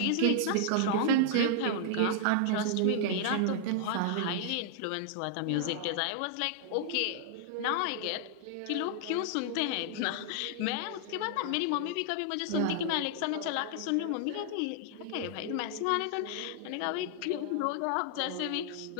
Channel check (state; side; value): different; both; correlation -0.01